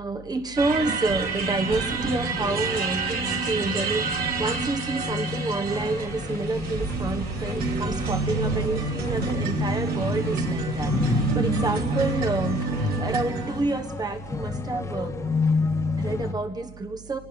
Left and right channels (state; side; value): noise; right; hum, 20 dB below the sound